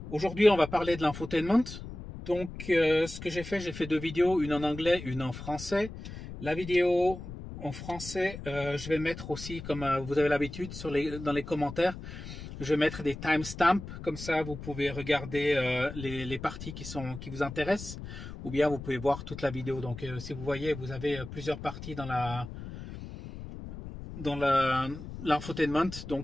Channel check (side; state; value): left; noise; rumble, 11 dB below the sound